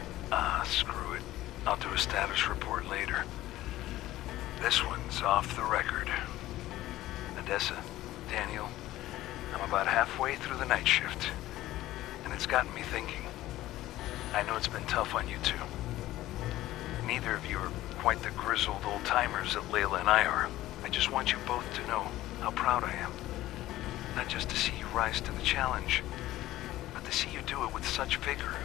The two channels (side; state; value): right; quieter; 15.5 dB